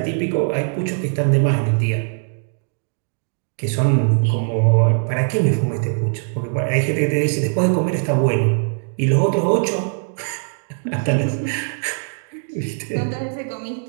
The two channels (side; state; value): left; silent; 57 dB below the other